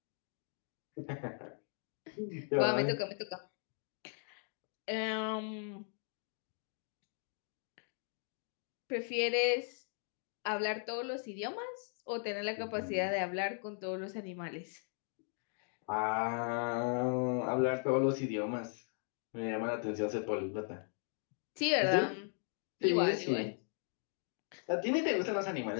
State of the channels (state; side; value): silent; right; 52 dB below the other